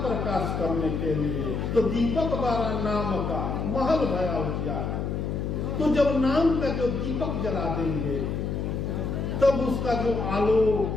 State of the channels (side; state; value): left; noise; hum, 2 dB below the sound